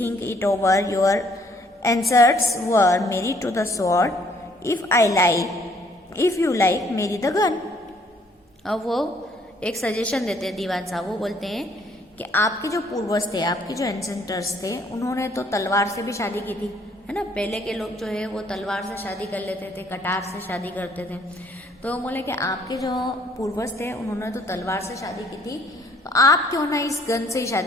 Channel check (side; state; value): both; normal; correlation 0.63